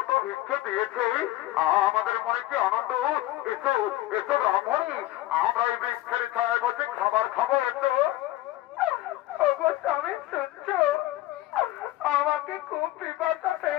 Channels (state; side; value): quieter; right; 16.0 dB